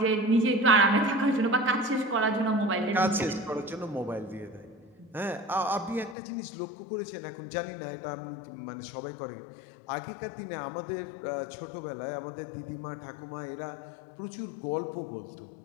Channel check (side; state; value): right; drops out; at 6.2 s